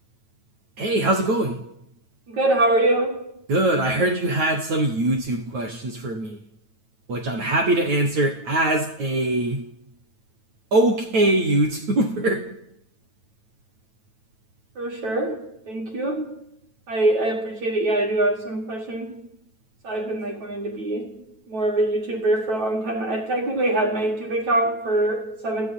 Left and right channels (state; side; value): late; left; 9.1 ms